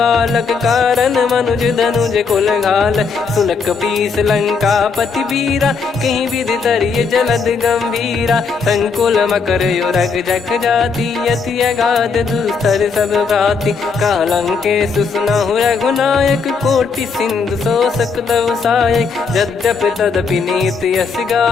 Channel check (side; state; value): right; quieter; 5.2 dB